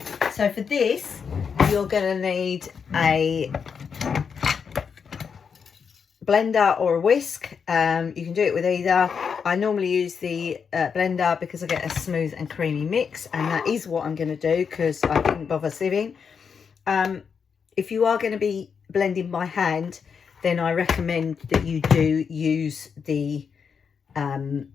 So for this, you're going to need a blender or a whisk. You can do it with either. I normally use the blender because I get a smooth and creamy mix, and that is what I'm going to do because I didn't bother sieving. If you are going to be blending by hand, then I recommend that you do use the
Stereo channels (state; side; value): quieter; right; 6.3 dB